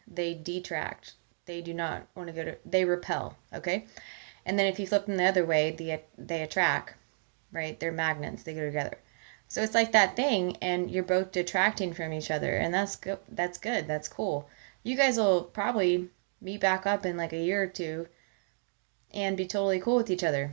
they detract. They do not want to they repel, okay? And then if you flip them the other way, they attract, right? They're magnets, they go together. So it's like that thing, and you're both detracting from each other, and that's good. That's cool. You guys will probably meet back up in like a year or two and be totally cool with each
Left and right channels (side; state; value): left; silent; digital silence